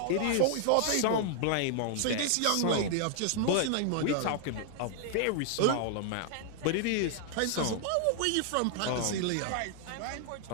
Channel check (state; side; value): different; both; correlation -0.01